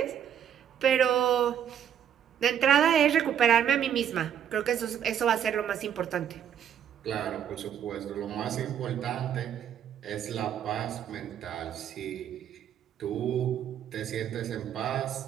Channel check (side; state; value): left; quieter; 9.2 dB